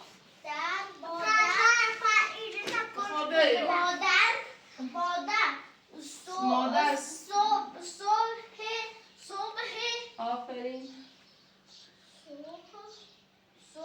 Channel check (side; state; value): both; identical; correlation 1.00